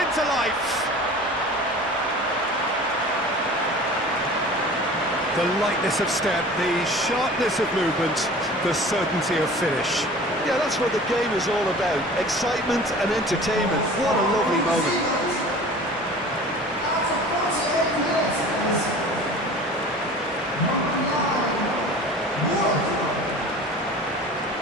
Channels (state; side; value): normal; both; correlation 0.41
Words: into life. The lightness of step, the sharpness of movement, the certainty of finish. Yeah, that's what the game is all about. Excitement and entertainment. What a lovely moment.